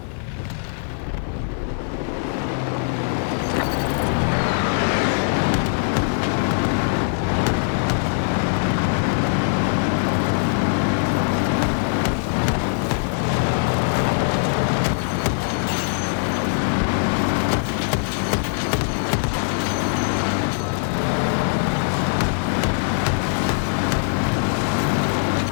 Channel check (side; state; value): right; silent; digital silence